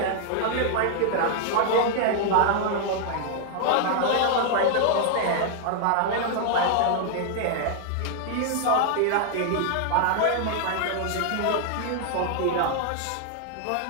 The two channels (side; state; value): both; different; correlation 0.00